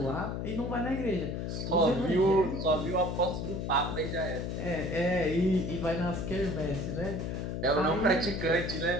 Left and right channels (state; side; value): noise; left; hum, 3 dB below the sound